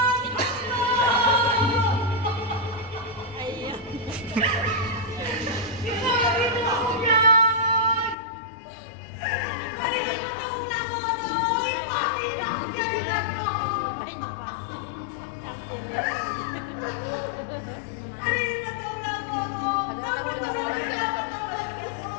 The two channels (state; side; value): drops out; right; at 8.2 s